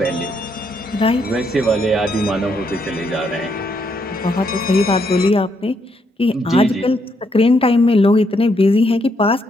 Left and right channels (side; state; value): both; normal; correlation 0.75